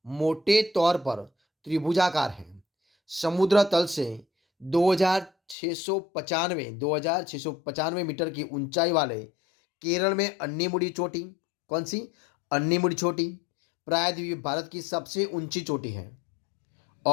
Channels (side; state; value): right; drops out; at 5.6 s